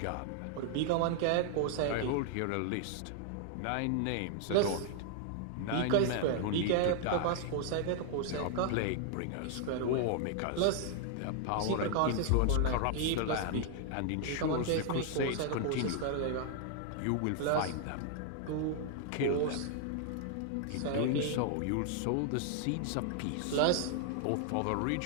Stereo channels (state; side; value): different; both; correlation 0.00